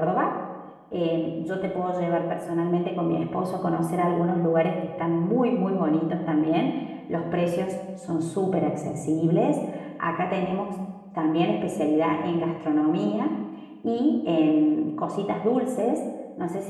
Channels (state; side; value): identical; both; correlation 1.00